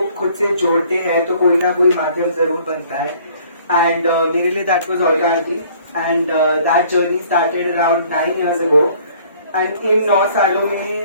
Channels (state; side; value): inverted; both; correlation -0.57